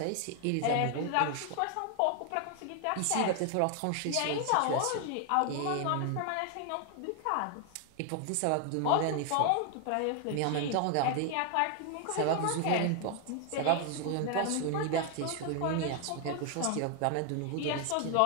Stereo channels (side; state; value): both; different; correlation 0.00